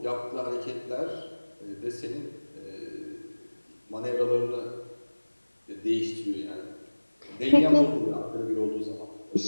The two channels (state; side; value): inverted; both; correlation -1.00